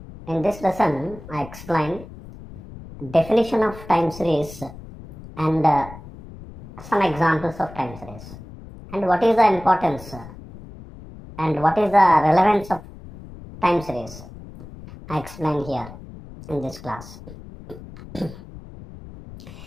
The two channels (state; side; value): noise; left; rumble, 16 dB below the sound